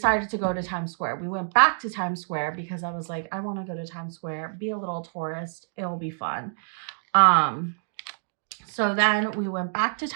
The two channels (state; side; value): silent; left; digital silence